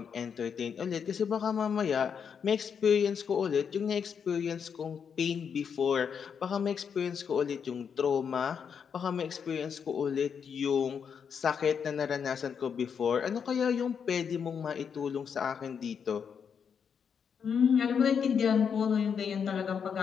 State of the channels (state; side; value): quieter; right; 7.0 dB